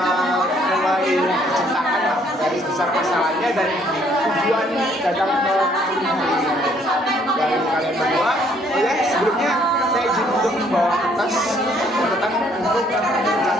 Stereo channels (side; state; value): both; normal; correlation 0.64